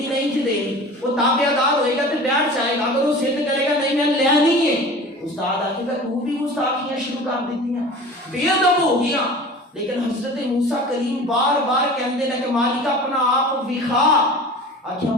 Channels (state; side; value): normal; both; correlation 0.39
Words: نہیں تھی دینی، وہ تابعہ دار ہوئے گا تو بیٹھ جائے گا، اگر وہ ضد کرے گا نہیں میں لینی ہے، استاد آکھے گا تو بھی گستاخیاں شروع کر دیتی ہیں، بے ادب ہو گیا۔ لیکن حضرت موسیٰ کریم بار بار کہندے نے کہ مالک اپنا آپ وکھا، آکھیا